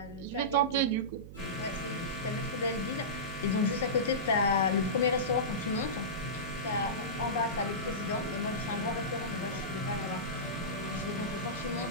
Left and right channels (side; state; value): right; noise; hum, 13 dB below the sound